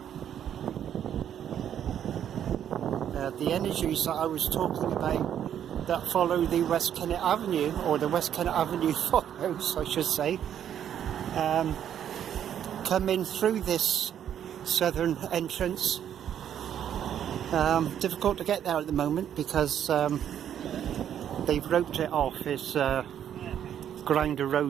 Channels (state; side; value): quieter; left; 9.7 dB